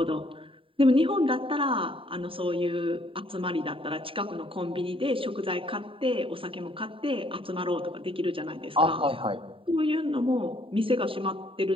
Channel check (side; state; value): left; late; 0.26 ms